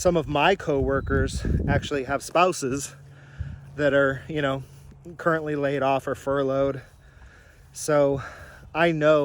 of my coworkers actually have spouses that are, you know, currently laid off or furloughed. So I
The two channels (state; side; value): identical; both; correlation 1.00